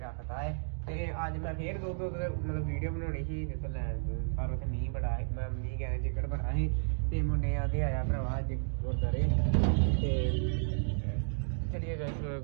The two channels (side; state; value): left; silent; digital silence